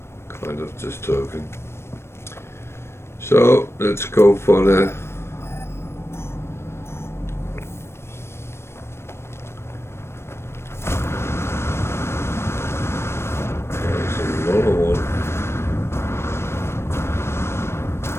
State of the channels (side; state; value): right; late; 0.12 ms